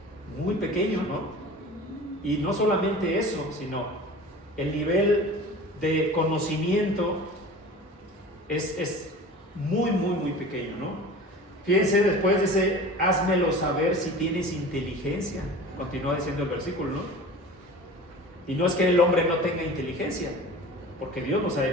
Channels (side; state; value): both; normal; correlation 0.38